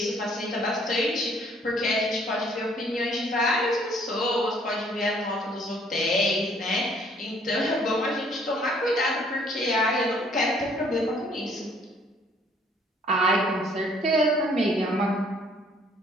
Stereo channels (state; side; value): normal; both; correlation 0.62